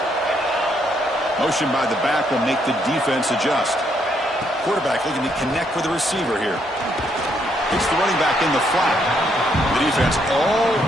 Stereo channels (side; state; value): both; normal; correlation 0.73